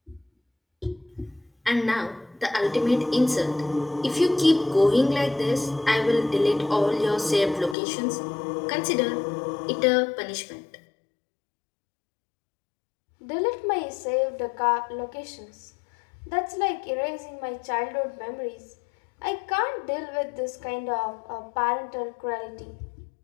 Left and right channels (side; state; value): right; drops out; at 7.8 s